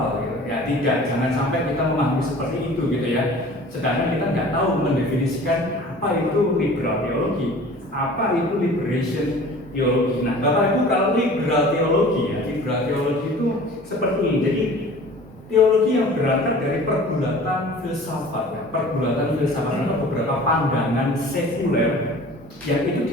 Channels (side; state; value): both; normal; correlation 0.44